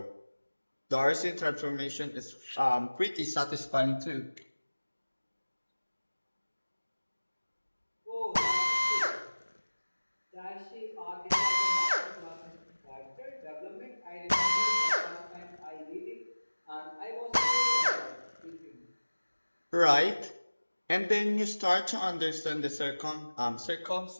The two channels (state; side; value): inverted; both; correlation -1.00